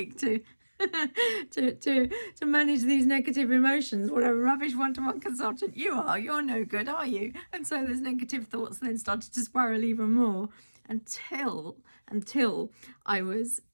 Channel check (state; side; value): inverted; both; correlation -1.00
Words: to manage these negative emotions. What a rubbish one-to-one consultant you are. You're no good, are you? And so those negative thoughts then started to spiral even more until I was